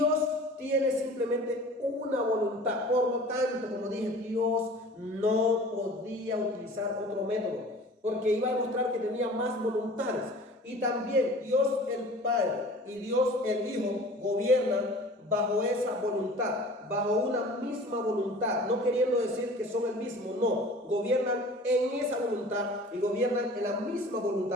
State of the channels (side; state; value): both; normal; correlation 0.43